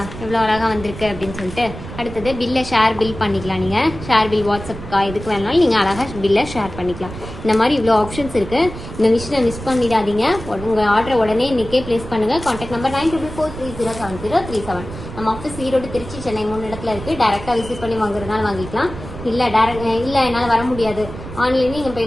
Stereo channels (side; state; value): right; noise; rumble, 11 dB below the sound